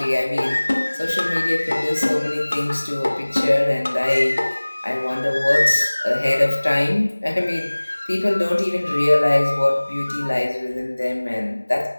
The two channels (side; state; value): both; inverted; correlation -1.00